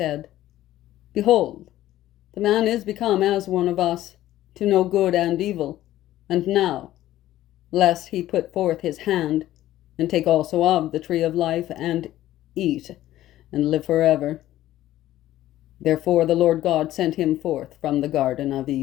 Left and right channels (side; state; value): right; quieter; 14.2 dB